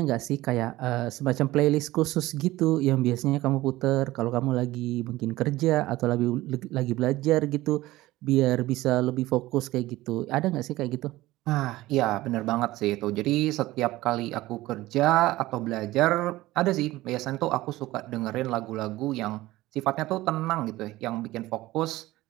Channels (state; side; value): quieter; left; 17.6 dB